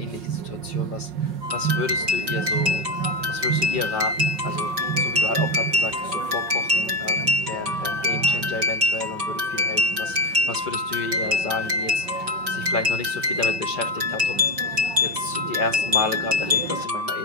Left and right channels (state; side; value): late; left; 5.0 ms